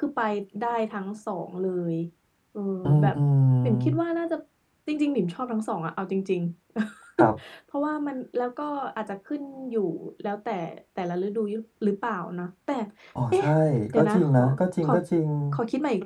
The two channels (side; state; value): both; identical; correlation 1.00